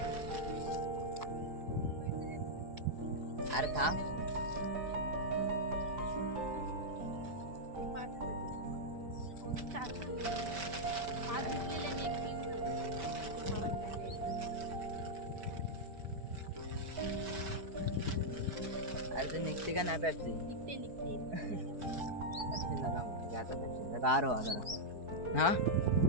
अरे थांब अरे ते निघते का नाही पेप्सी. पेप्सी नका मग आता, पेप्सी गार हो जरा. हा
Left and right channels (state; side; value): late; left; 4.8 ms